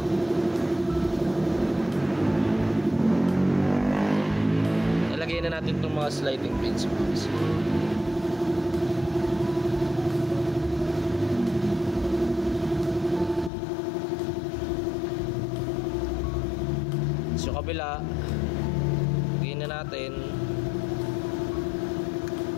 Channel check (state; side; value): drops out; right; at 13.5 s